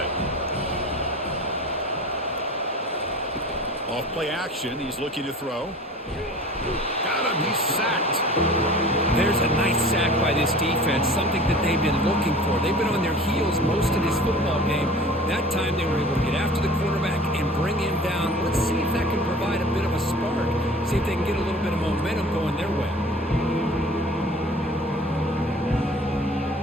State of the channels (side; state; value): both; normal; correlation 0.43